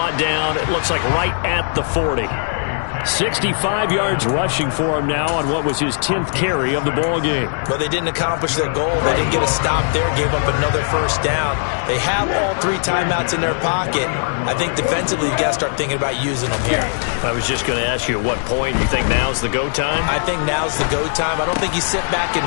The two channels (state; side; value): silent; right; digital silence